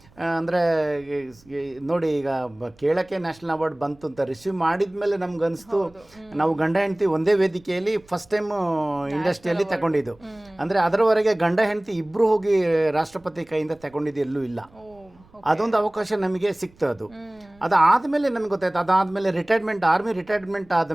ಅಂದರೆ ನೋಡಿ ಈಗ ಕೇಳಕ್ಕೆ ನ್ಯಾಷನಲ್ ಅವಾರ್ಡ್ ಬಂತು ಅಂತ ರಿಸೀವ್ ಮಾಡಿದ ಮೇಲೆ ನಮ್ಗೆ ಅನಿಸ್ತು, ನಾವು ಗಂಡ ಹೆಂಡತಿ ಒಂದೇ ವೇದಿಕೆಯಲ್ಲಿ ಫಸ್ಟ್ ಟೈಮ್ ಇಂಡಸ್ಟ್ರಿಯಲ್ಲಿ ತಗೊಂಡಿದ್ದು. ಅಂದರೆ ಅದರವರೆಗೆ ಗಂಡ ಹೆಂಡತಿ ಇಬ್ಬರು ಹೋಗಿ ರಾಷ್ಟ್ರಪತಿ ಕೈಯಿಂದ ತಗೊಂಡಿದ್ದು ಎಲ್ಲೂ ಇಲ್ಲ. ಅದೊಂದು ಅವಕಾಶ ನಮಗೆ ಸಿಕ್ತು. ಅದಾದಮೇಲೆ ನಮ್ಗೆ ಗೊತ್ತಾಯ್ತು. ಅದಾದಮೇಲೆ ಆರ್ಮಿ ರಿಟೈರ್ಮೆಂಟ್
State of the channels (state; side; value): noise; right; rumble, 29 dB below the sound